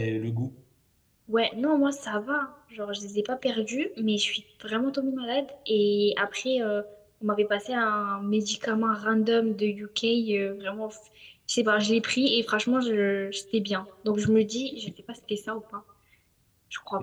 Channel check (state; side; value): identical; both; correlation 1.00